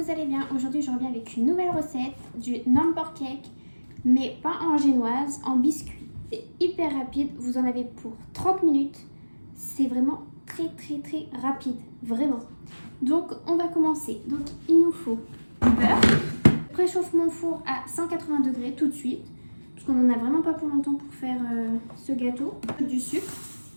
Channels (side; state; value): both; inverted; correlation -1.00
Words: allez bien. Aujourd'hui je reviens avec une nouvelle recette du number cake, mais pas en génoise, en biscuit. C'est hyper rapide, vous en avez pour 30 minutes. C'est vraiment très rapide, vraiment. Donc on va commencer. Donc il nous faut du beurre. Je préchauffe mon four à 180 degrés tout de suite, parce qu'on n'en a vraiment pas pour longtemps pour faire ce gâteau. Du sucre